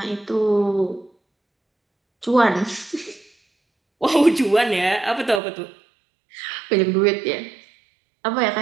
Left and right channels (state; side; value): drops out; left; at 5.4 s